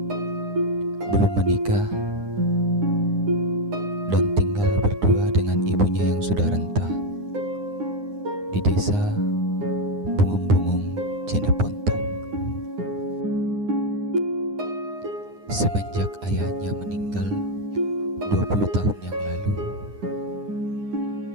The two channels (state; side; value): late; left; 9.8 ms